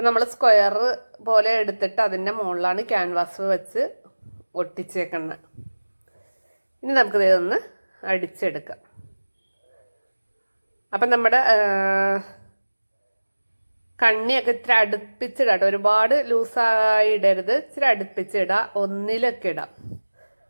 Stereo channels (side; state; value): both; inverted; correlation -1.00